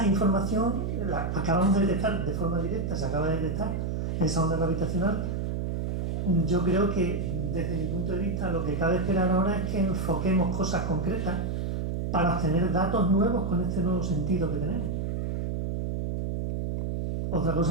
información la acabamos de detectar de forma directa, se acaba de detectar esa onda gravitacional. Yo creo que desde mi punto de vista lo que cabe esperar ahora es que enfoquemos cosas concretas para obtener datos nuevos con este nuevo sentido que tenemos. Otra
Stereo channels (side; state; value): right; noise; hum, 1 dB below the sound